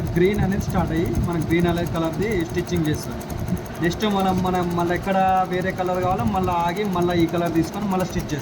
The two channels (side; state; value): both; identical; correlation 1.00